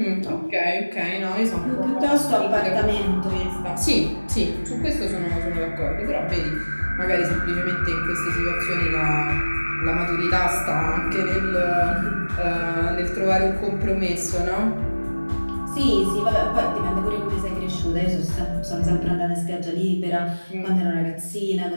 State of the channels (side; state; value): both; inverted; correlation -1.00